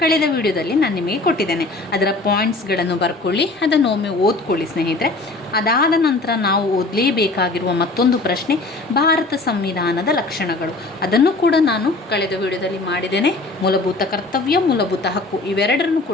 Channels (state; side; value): quieter; right; 3.2 dB